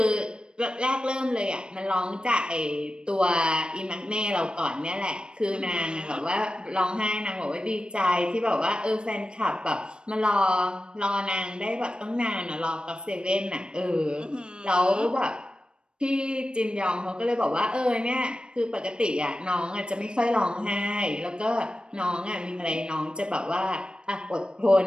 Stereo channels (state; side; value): late; left; 0.052 ms